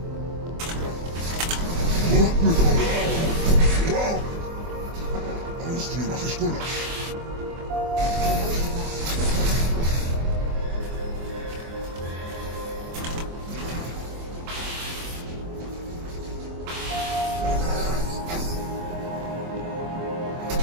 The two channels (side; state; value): left; late; 24 ms